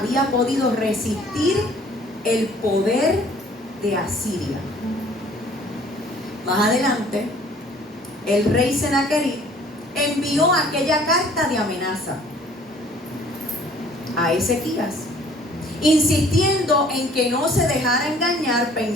podido resistir el poder de Asiria. Más adelante, el rey Senaquerib envió aquella carta de amenaza a Ezequías, insistiendo en que no se dejara engañar,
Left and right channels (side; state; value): both; normal; correlation 0.55